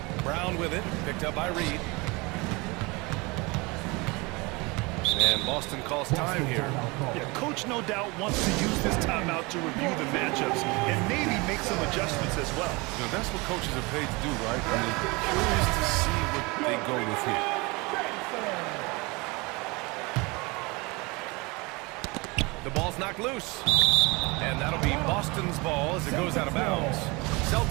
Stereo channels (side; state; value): left; quieter; 25.9 dB